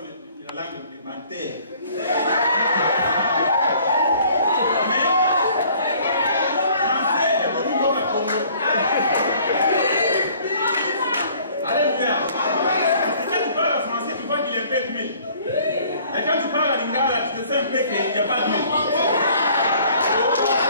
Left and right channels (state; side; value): inverted; both; correlation -0.56